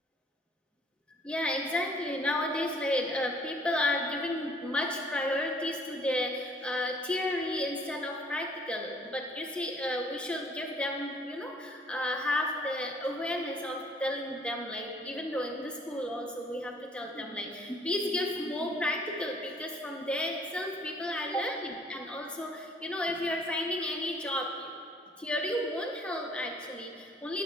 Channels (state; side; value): normal; both; correlation 0.59